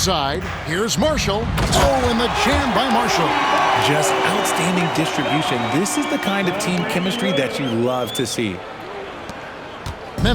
here's Marshall. Oh, and the jam by Marshall. Just outstanding distribution. This is the kind of team chemistry that you love to see.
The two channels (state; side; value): identical; both; correlation 1.00